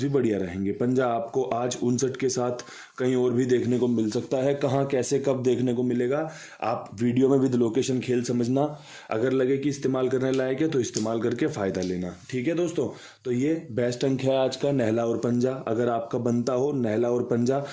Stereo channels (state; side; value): identical; both; correlation 1.00